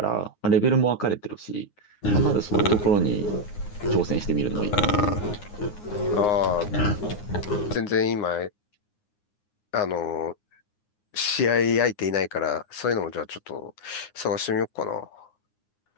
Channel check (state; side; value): late; right; 9.6 ms